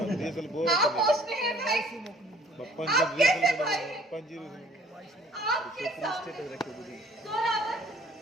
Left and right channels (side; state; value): both; normal; correlation 0.57